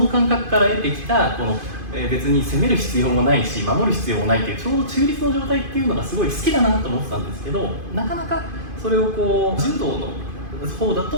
感覚から得てきたこの別に攻める必要もないし守る必要もないっていうちょうど中立の状態っていうのがすごい好きだなと思ってたんですけど、なかなかそれを柔道の方だ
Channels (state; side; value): late; left; 2.5 ms